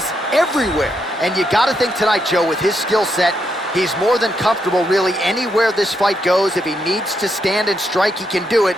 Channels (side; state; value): both; normal; correlation 0.79